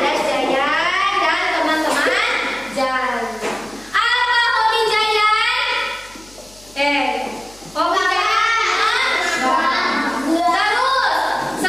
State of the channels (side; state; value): left; noise; hum, 25 dB below the sound